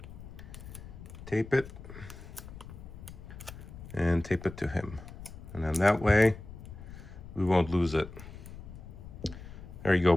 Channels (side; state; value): left; noise; rumble, 14 dB below the sound